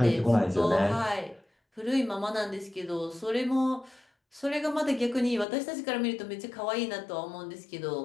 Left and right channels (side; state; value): right; drops out; at 5.5 s